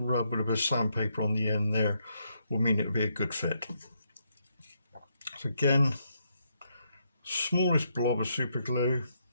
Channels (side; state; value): both; inverted; correlation -0.77